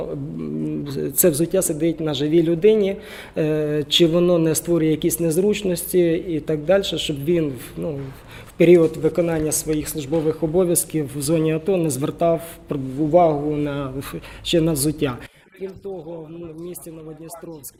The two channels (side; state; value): both; identical; correlation 1.00